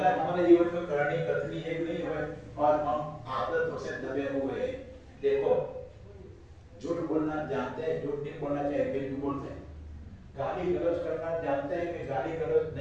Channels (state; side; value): identical; both; correlation 1.00